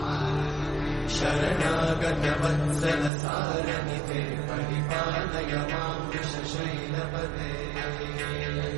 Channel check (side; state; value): left; drops out; at 3.1 s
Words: शरणागत वत्सल सारनिते परिपालय मां वृषशैलपते